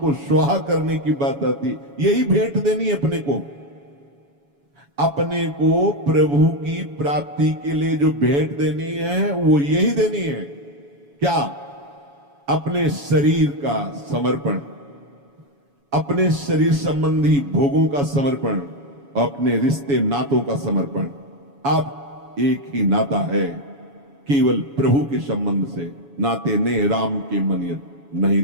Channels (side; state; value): left; late; 7.1 ms